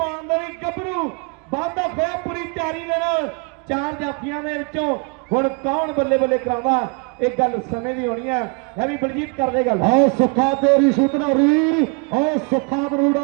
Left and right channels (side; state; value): left; quieter; 32.9 dB